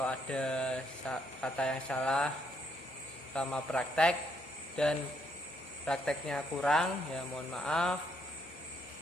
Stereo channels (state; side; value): normal; both; correlation 0.73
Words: ada kata yang salah sama praktek dan prakteknya kurang ya, mohon maaf.